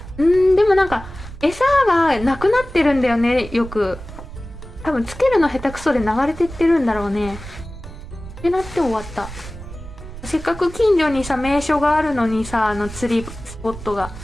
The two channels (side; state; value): right; noise; rumble, 13 dB below the sound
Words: でもなんか餌がなくなってるんだよね、よく。多分つけるの下手くそで流れてってるんだろうねってなって終わった。せっかく近所にさ名所があるのにさ、釣りスポットが